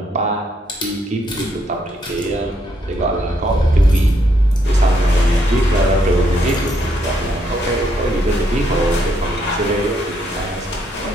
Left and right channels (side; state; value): both; normal; correlation 0.74